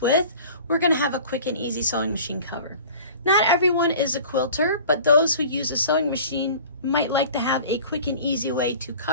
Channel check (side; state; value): both; inverted; correlation -0.43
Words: with. We're going to have a quick and easy sewing machine cover. Not everyone is a quilter, but those who use a sewing machine might like to have a quick and easy way to